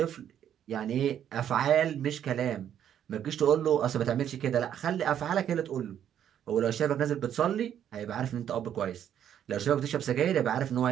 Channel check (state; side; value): quieter; left; 9.8 dB